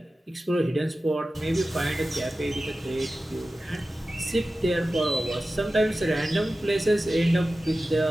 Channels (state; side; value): normal; both; correlation 0.94